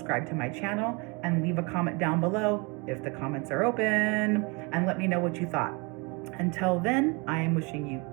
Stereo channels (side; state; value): left; quieter; 29.6 dB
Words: to my channel, and leave a comment down below if the comments are open, and let me know what you thought. Until then, I am wishing you